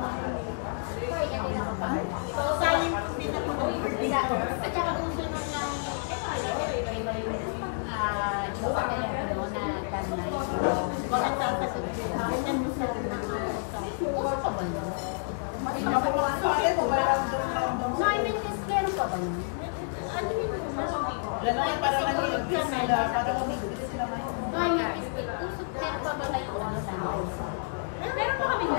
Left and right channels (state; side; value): silent; right; 58 dB below the other